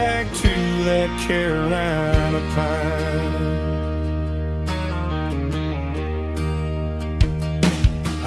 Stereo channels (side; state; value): both; identical; correlation 1.00